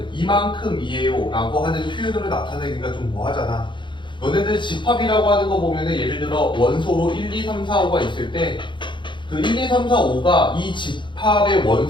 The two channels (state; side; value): late; right; 0.23 ms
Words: 이만큼이에요 라고 하는 표현으로 나타내기가 좀 뭐하잖아. 너네들 집합이라고 하는 거 보면은 예를 들어 원소로 1, 2, 3, 4, 5가 있을 때 그 1, 2, 3, 4, 5가 이 집합의